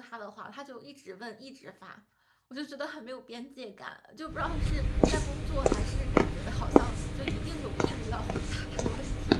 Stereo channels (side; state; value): both; identical; correlation 1.00